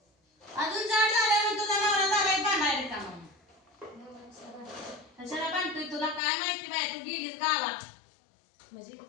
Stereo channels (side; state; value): right; drops out; at 6.2 s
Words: अजून जाड झाल्यावर तुझा नवरा झालाय बांधायला का मग कशाला बांधतोय तुला काय माहिती बाय तू गेलीस गावात म्हणजे